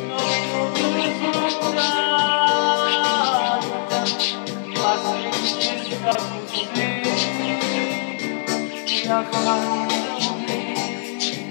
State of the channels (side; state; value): right; silent; 64 dB below the other